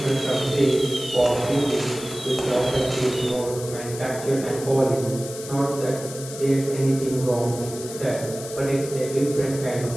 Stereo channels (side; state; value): left; noise; hiss, 12 dB below the sound